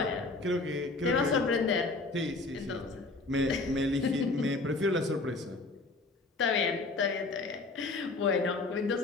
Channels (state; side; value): quieter; right; 3.4 dB